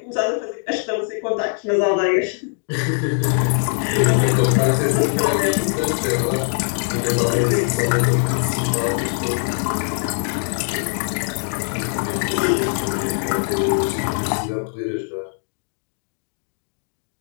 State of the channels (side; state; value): right; silent; digital silence